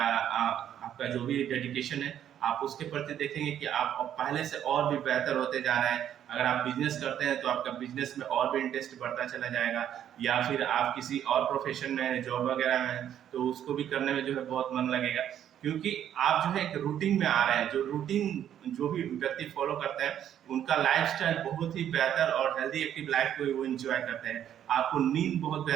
आपका जो भी डेडिकेशन है, आप उसके प्रति देखेंगे कि आप पहले से और भी बेहतर होते जा रहे हैं। अगर आप बिजनेस करते हैं तो आपका बिजनेस में और भी इंटरेस्ट बढ़ता चला जाएगा, या फिर आप किसी और प्रोफेशन में जॉब वगैरह में तो उसको भी करने में जो है बहुत मन लगेगा, क्योंकि आप जो है एक रूटीन में आ रहे हैं। जो रूटीन जो भी व्यक्ति फॉलो करते हैं उनका लाइफस्टाइल बहुत ही बेहतर और हेल्दी एक्टिव लाइफ को वो एंजॉय करते हैं। आपको नींद बहुत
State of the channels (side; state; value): left; quieter; 10.2 dB